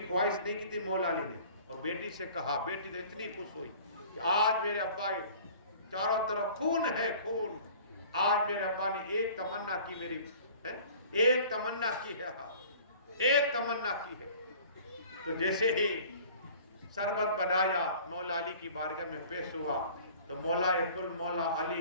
خواہش نہیں کی تھی مولا علی نے, اور بیٹی سے کہا. بیٹی تو اتنی خوش ہوئی کہ آج میرے ابا چاروں طرف خون ہے خون. آج میرے ابا نے ایک تمنا کی میری ایک تمنا کی ہے ایک تمنا کی ہے. تو جیسے ہی شربت بنایا مولا علی کی بارگاہ میں پیش ہوا تو مولا کل مولا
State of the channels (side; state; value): both; inverted; correlation -0.47